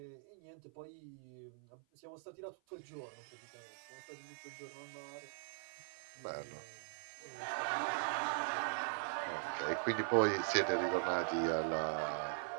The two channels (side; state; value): left; silent; 50 dB below the other